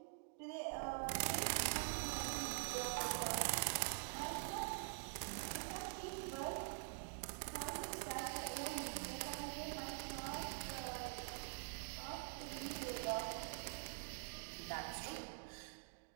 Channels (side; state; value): left; silent; digital silence